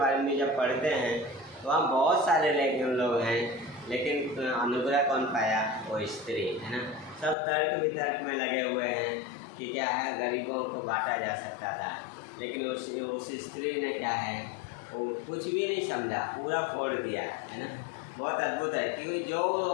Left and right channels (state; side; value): drops out; right; at 7.4 s